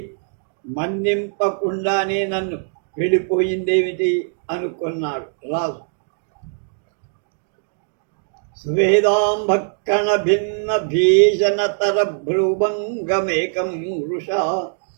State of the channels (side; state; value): left; silent; digital silence